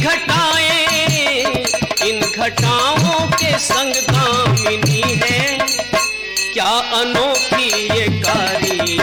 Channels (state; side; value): noise; left; hum, 29 dB below the sound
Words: इन घटाओं के संग दामिनी है, क्या अनोखी ये